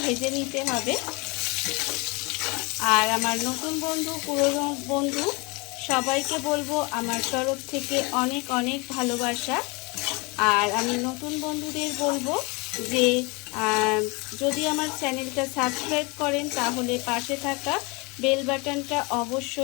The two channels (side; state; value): right; quieter; 28.0 dB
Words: ভেজে নিতে হবে। আর আমার নতুন বন্ধু পুরনো বন্ধু সবাইকে বলবো আমার তরফ থেকে অনেক অনেক ভালোবাসা। আর আমি নতুন বন্ধুদের বলবো যে যদি আমার চ্যানেলটা সাবস্ক্রাইব করেন তাহলে পাশে থাকা বেল বাটনটা